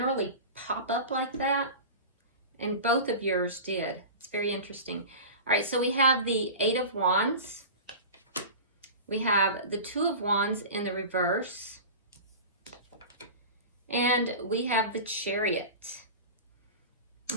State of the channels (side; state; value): both; inverted; correlation -0.32